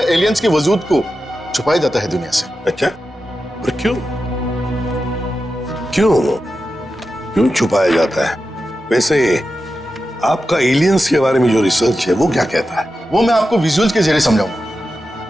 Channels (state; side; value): normal; both; correlation 0.91